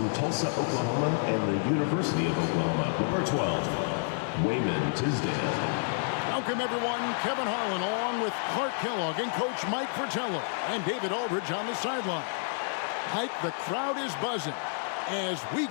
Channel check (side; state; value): right; silent; digital silence